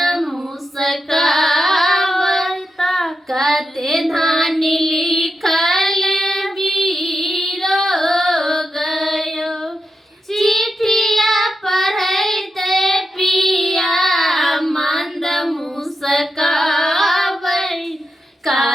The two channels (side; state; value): both; normal; correlation 0.87